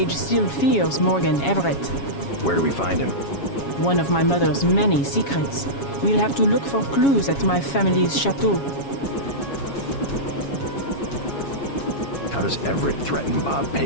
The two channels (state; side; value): late; right; 7.2 ms